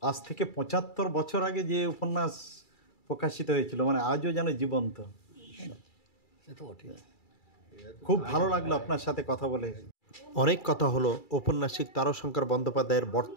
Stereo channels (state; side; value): late; right; 2.3 ms